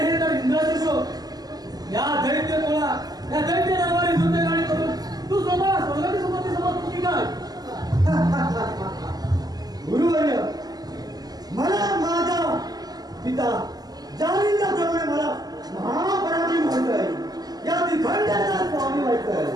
तर इंद्राचे शोध. या दैत्य तोळा, या दैत्य दरबारी नृत्य गाणे करून तू स्वतः स्वर्गाची संपत्ती समजतो की काय? गुरुवर्य, मला माझा पिता जालिंदाप्रमाणे मला महापराक्रमी व्हायचंय. या तिखंडाचा स्वामी व्हायचंय.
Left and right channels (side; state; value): left; late; 0.19 ms